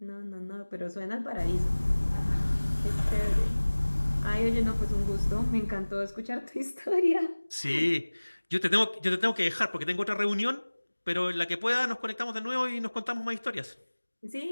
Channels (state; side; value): inverted; both; correlation -1.00